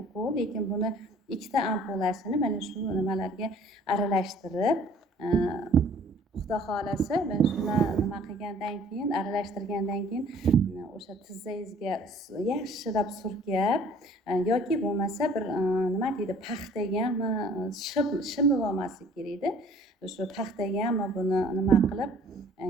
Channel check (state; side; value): normal; both; correlation 0.54